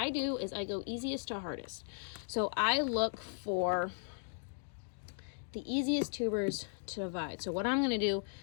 do is I go easiest to hardest. So I look for the easiest tubers to divide. So what I'm going to do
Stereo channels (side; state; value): right; silent; digital silence